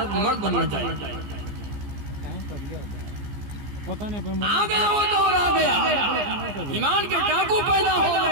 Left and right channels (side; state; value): left; late; 15 ms